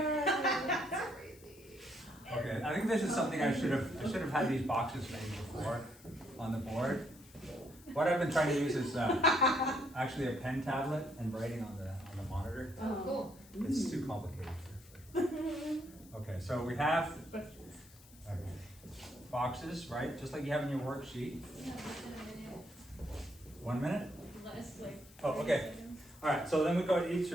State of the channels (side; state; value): left; noise; hiss, 23 dB below the sound